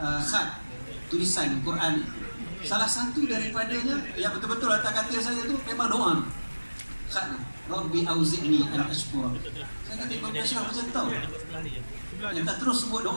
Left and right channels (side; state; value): both; inverted; correlation -1.00